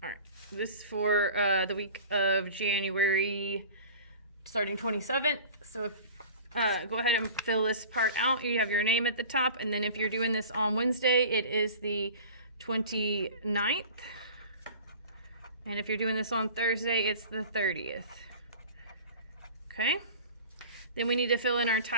All right, this is for the week of January starting 27th. So if go ahead and fill this part out. You have your name at the top, and then if you're doing this on Wednesday, it is the 29th. And if you're doing this on Thursday, it's the 30th. Okay? Then we need to fill in our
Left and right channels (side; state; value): both; inverted; correlation -0.40